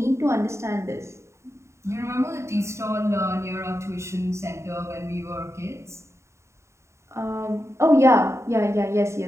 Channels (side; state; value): left; late; 0.14 ms